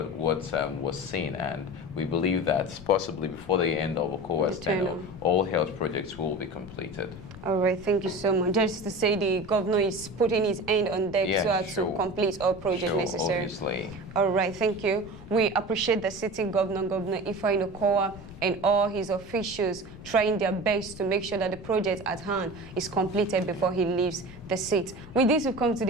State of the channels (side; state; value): left; noise; rumble, 16 dB below the sound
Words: was seen, and we believe that possibly before the end of Okowa's tenure, all health projects will be completed. All right, thank you so much. Just to say, the governor is putting his hand on deck to complete all projects necessary. Obviously. All right, thank you. We appreciate the sitting governor, Governor Ifeanyi Okowa, and all his officials trying their best to make sure that the project at hand is completed before he leaves the seat. With this, we've come to